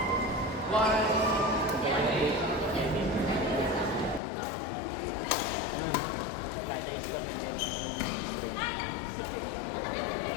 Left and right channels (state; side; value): drops out; right; at 4.2 s